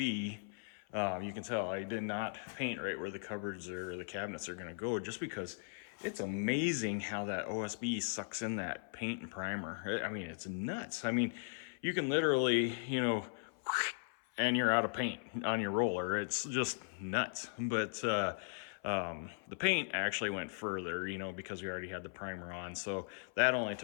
you can tell I did not paint right where the cupboards or the cabinets are going to go, just because it's amazing how that OSB sucks in that paint and primer. I mean, it's nuts. I mean, you can literally, you know, and you're out of paint on your roller. It's just nuts. But the paint actually went further, you know, because we already had the primer on. So that only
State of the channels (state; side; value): silent; right; 52 dB below the other